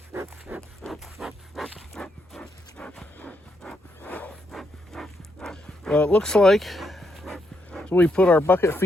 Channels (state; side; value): normal; both; correlation 0.79